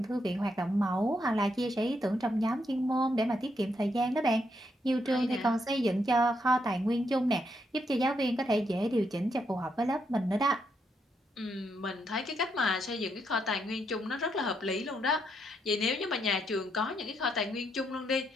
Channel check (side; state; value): both; normal; correlation 0.78